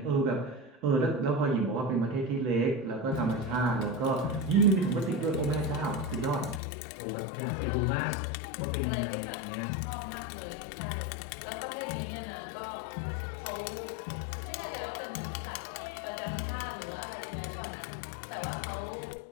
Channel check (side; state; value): right; drops out; at 6.6 s